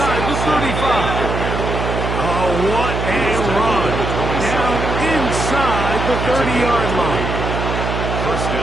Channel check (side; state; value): right; noise; hum, 3 dB below the sound